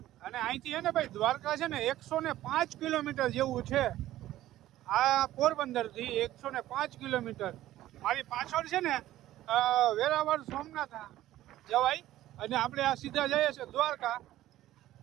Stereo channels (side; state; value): left; quieter; 14.4 dB